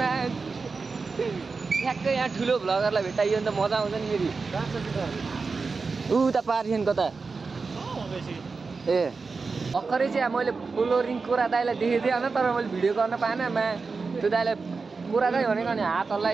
मा ठ्याक्कै यहाँ ठुलो भ्लगरलाई भेटाइयो भने त मजा आउँछ नि फेरि उता पारिछन् कता ए भर्खरै चाहिँ मैले फ्लोरिङ कोरा दाइलाई देखेको थिएँ होइन तर मैले भिडियो गर्न पाएन त्यो दाइलाई कोरा दाइ भनेको अनि हात हल्ला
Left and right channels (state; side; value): quieter; left; 4.5 dB